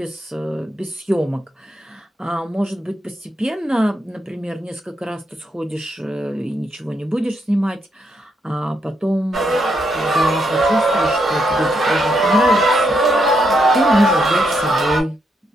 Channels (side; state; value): both; normal; correlation 0.78